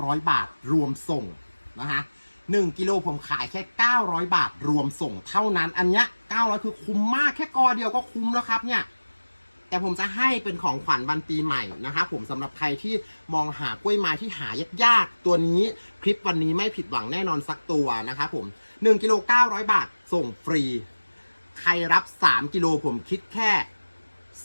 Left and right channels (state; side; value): inverted; both; correlation -1.00